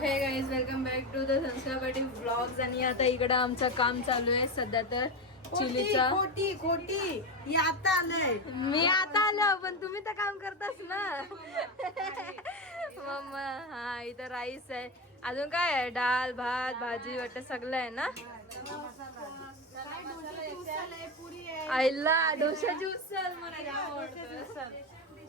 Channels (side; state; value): both; normal; correlation 0.17